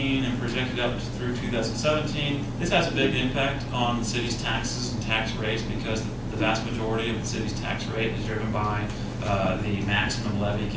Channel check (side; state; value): both; identical; correlation 1.00